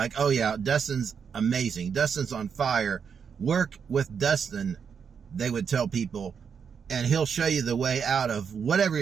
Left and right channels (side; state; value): left; quieter; 6.7 dB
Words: oh yeah, Dustin's amazing. Dustin's on fire. Work with Dustin, they would tell people. And he'll show you the way out of whatever